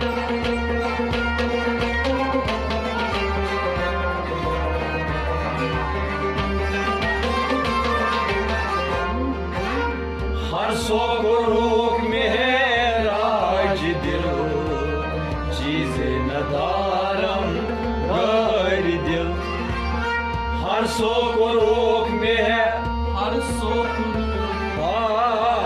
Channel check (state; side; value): identical; both; correlation 1.00